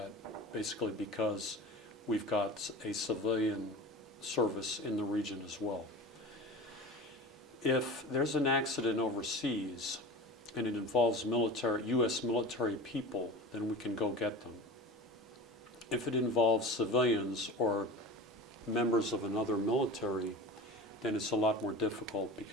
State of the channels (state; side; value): normal; both; correlation 0.34